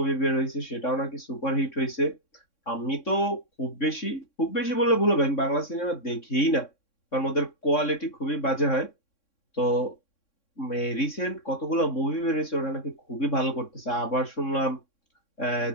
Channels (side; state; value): right; late; 3.6 ms